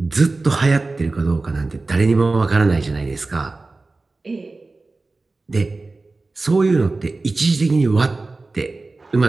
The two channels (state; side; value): quieter; left; 3.4 dB